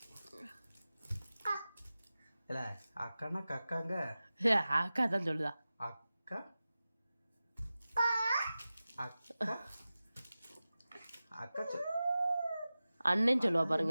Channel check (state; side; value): inverted; both; correlation -0.96